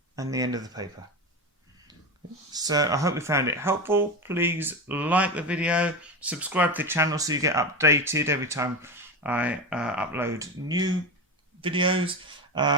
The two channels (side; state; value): both; normal; correlation 0.21